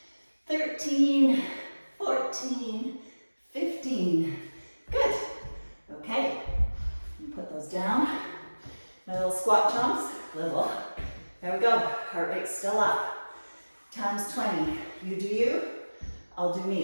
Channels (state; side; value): inverted; both; correlation -1.00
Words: 13, 14, 15. Good. Okay. Put those down. My little squat jumps. Little. There we go. Heart rate's still up. Times 20. You do you. I'll do